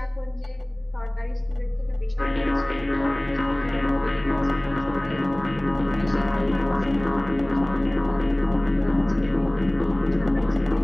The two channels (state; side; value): noise; right; rumble, 22 dB below the sound